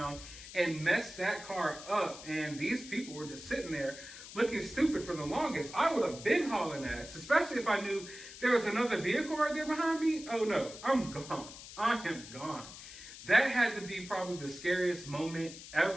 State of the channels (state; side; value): noise; left; hiss, 14 dB below the sound